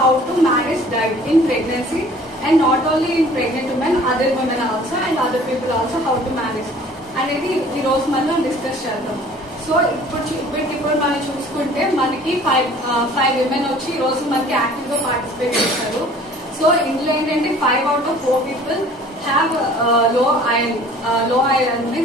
to manage diet in pregnancy and not only in pregnant women, other women also and other people also how to manage అనేది ఈ రోజు మనం discuss చేద్దాం. So ఇప్పుడు మనం చూసుకుంటే మనకి five women వచ్చి ఈ రోజు మనకి యాక్టివ్ గా పార్టిసిపేట్ చేస్తారు. సో ఇందులో ఏంటంటే 5 out of 4 people have low iron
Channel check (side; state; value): both; normal; correlation 0.50